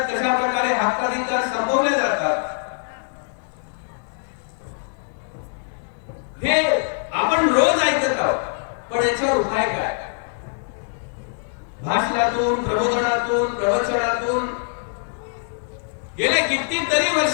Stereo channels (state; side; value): silent; right; 63 dB below the other